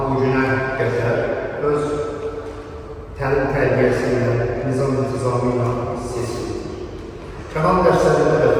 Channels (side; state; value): both; identical; correlation 1.00